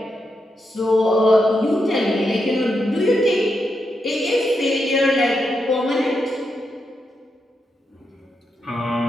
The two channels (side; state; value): both; normal; correlation 0.84